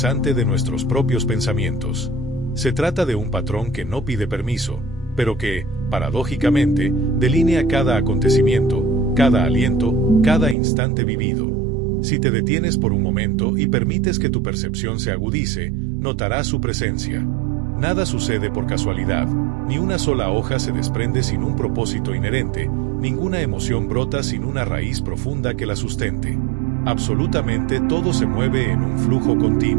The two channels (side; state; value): left; drops out; at 10.6 s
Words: de nuestros propios pensamientos. Se trata de un patrón que no pide permiso, pero que, paradójicamente, delinea cada acontecimiento, cada aliento, cada instante vivido. Si te detienes por un momento y permites que tu percepción se agudice, notarás su presencia. Nada sucede por casualidad, ni una sola hoja se desprende sin un propósito inherente, ninguna emoción brota sin una raíz profunda que la sustente. Absolutamente todo se mueve en un flujo